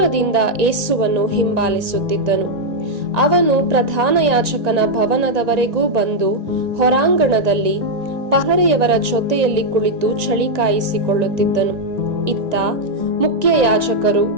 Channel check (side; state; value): left; late; 1.9 ms